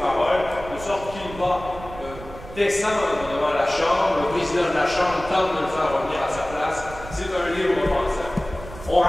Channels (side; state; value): right; noise; rumble, 14 dB below the sound